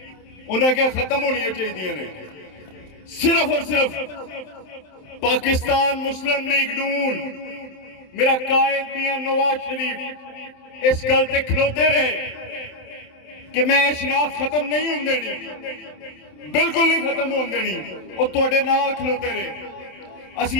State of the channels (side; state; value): right; late; 27 ms